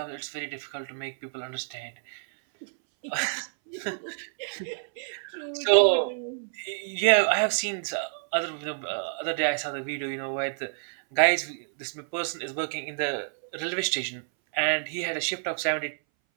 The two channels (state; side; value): silent; left; 59 dB below the other